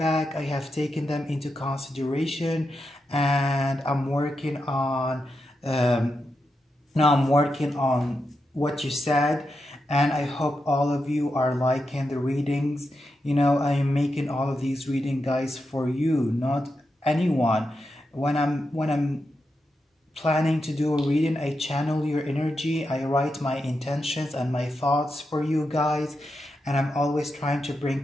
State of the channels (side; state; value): both; normal; correlation 0.87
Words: I have taken them into consideration, and I'm working on what you said, and I hope all of you are liking the readings. You know, I am making all of these reading guys for you, not anyone. When I'm planning to do a reading, I channel your energy, I write my intentions and my thoughts for you guys, and I'm always trying to